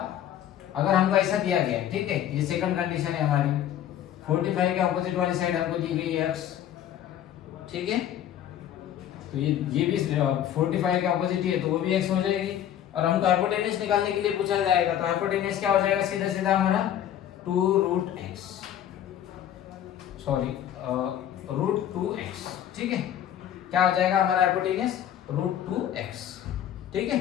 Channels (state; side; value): quieter; right; 10.7 dB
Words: अगर हमको ऐसा दिया गया, ठीक है, ये सेकंड कंडीशन है हमारी, 45 के ऑपोजिट वाली साइड हमको दी गई है x, ठीक है, तो ये भी 45 के ऑपोजिट ही है, तो वो भी x हो जाएगी। और हमको हाइपोटेनियस निकालने के लिए पूछा जाएगा, तो हाइपोटेनियस क्या हो जाएगा, सीधा सीधा हमारा 2√x, सॉरी √2x, ठीक है, क्या हो जाएगा हमारा हाइपोटेनियस √2x, ठीक है।